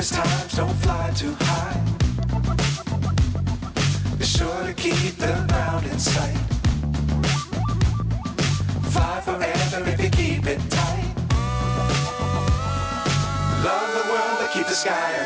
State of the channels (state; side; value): identical; both; correlation 1.00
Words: Times don't fly too high. Be sure to keep the ground in sight. Fly forever if you keep it tight. Love the world, but keep the sky